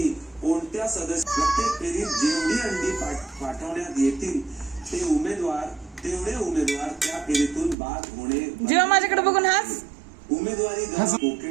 कोणत्या सदस्य प्रत्येक फेरीत जेवढी अंडी पाठवण्यात येतील तेवढे उमेदवार त्या फेरीतून बाद होणे। जेव्हा माझ्याकडे बघून हास उमेदवारी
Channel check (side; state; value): left; drops out; at 7.8 s